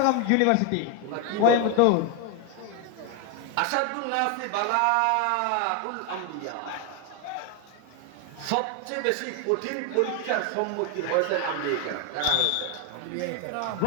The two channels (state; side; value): different; both; correlation 0.01